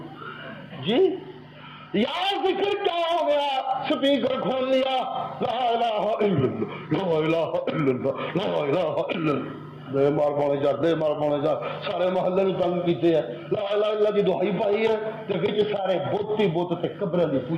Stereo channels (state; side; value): identical; both; correlation 1.00